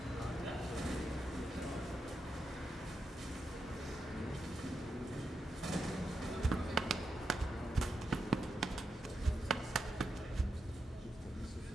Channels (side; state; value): both; normal; correlation 0.85